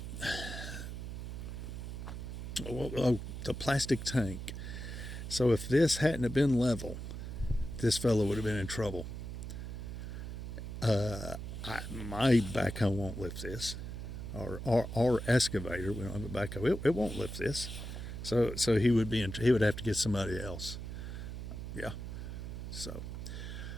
the plastic tank. So if this hadn't have been level, this fellow would have been in trouble. My backhoe won't lift this, or our excavator. We don't have a backhoe. It won't lift this. So he would he would have to get somebody else. Yeah. So,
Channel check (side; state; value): right; noise; hum, 7 dB below the sound